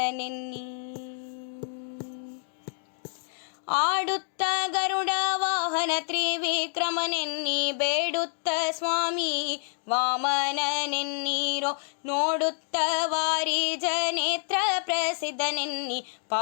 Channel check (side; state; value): right; silent; digital silence